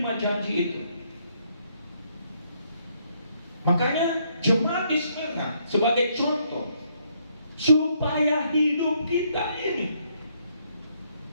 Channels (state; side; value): inverted; both; correlation -0.71